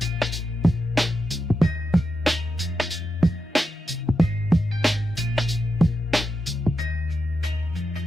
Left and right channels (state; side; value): normal; both; correlation 0.86